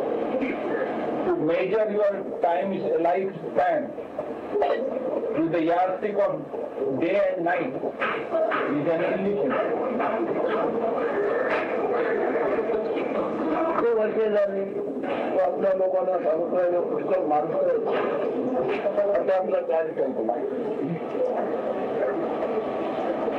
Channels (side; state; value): both; identical; correlation 1.00